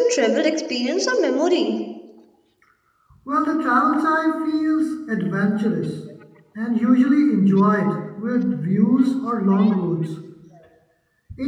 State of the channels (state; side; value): identical; both; correlation 1.00